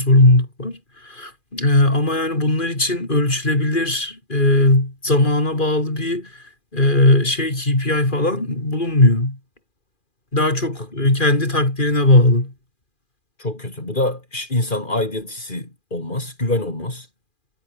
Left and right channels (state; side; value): late; right; 2.4 ms